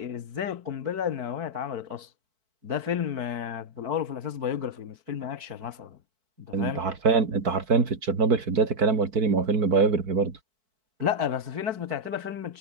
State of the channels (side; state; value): left; late; 4.5 ms